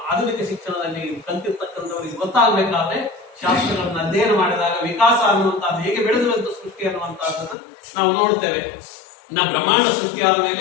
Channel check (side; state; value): right; drops out; at 7.6 s